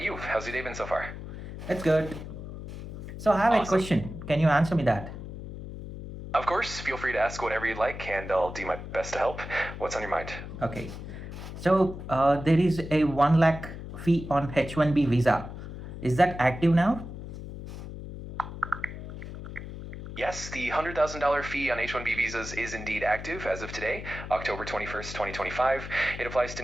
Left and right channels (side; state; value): left; noise; hum, 10 dB below the sound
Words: you? How's your day been so far? It's good. So, I have a Awesome. question. Can you answer me that? Of course, feel free to ask whatever you'd like, and I'll do my best to help. What's on your mind? Okay. So, there is a 1 lakh fee on H1B visa. Is that active now? Yes, the $100,000 fee on H-1B visas is indeed active as of today, October 21st, 2025. It applies to